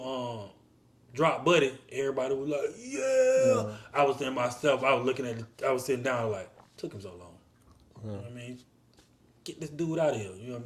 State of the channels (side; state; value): both; identical; correlation 1.00